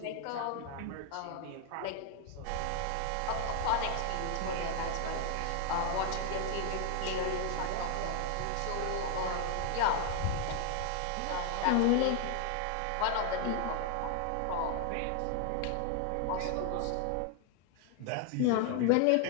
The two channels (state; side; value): different; both; correlation 0.00